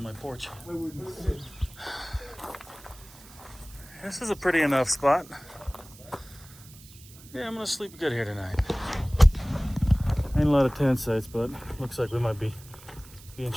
my porch. This is a pretty enough spot. Yeah, I'm gonna sleep good here tonight. Ain't a lot of tent sites, but looks like we might be being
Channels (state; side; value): noise; right; hiss, 21 dB below the sound